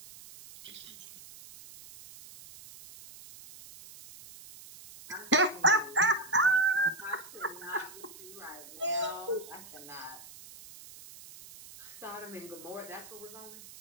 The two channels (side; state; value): right; noise; hiss, 17 dB below the sound